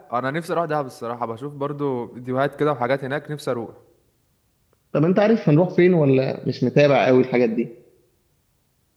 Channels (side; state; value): both; identical; correlation 1.00